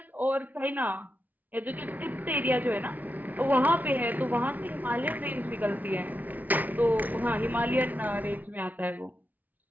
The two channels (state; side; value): late; left; 0.079 ms